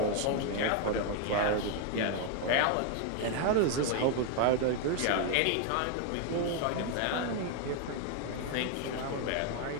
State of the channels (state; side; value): different; both; correlation 0.01